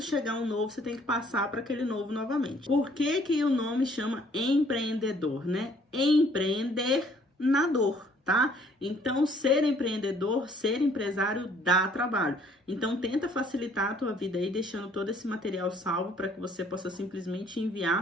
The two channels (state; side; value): normal; both; correlation 0.60